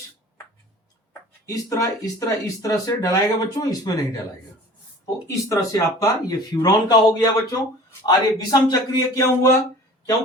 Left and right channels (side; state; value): both; normal; correlation 0.44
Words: इस तरह से डलाएगा बच्चों, इसमें नहीं डलाएगा। तो इस तरह से आपका ये फ्यूरॉन का हो गया बच्चों। और ये विषम चक्रीय क्यों हुआ,